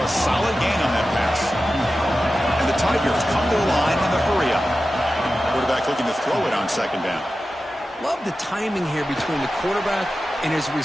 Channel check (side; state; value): both; normal; correlation 0.93